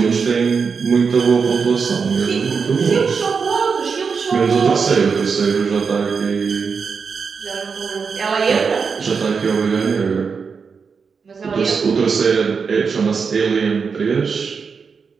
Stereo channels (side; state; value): left; quieter; 5.6 dB